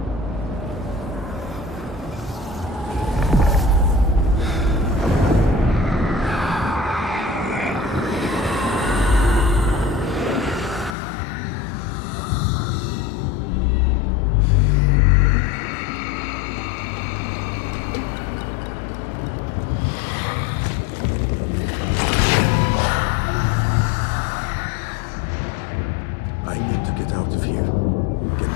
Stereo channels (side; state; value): right; drops out; at 11.0 s